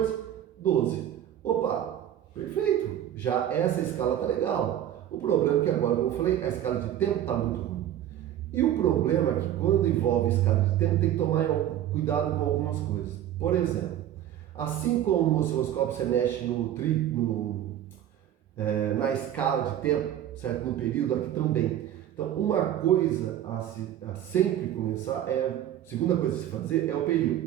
12. Opa, perfeito. Já essa escala tá legal. O problema é que agora, como eu falei, a escala de tempo tá muito ruim. E o problema é que quando envolve escala de tempo, tem que tomar cuidado com algumas coisas. Por exemplo, assim como no osciloscópio você mexe na escala de tempo, certo? No período, aqui também. Então, uma coisa a sempre começar segunda coisa a se fazer é o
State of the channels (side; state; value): left; quieter; 11.5 dB